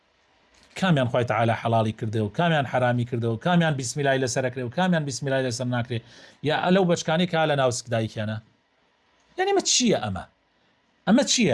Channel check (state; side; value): identical; both; correlation 1.00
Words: كاميان خوي تعالى حلالي كرده وكاميان حرامي كرده وكاميان بسم الله إلى سركره وكاميان بسم الله إلى سرناكره يا لو بشكاني كالا ناوسك دايك أنا يعني ما تشيء أما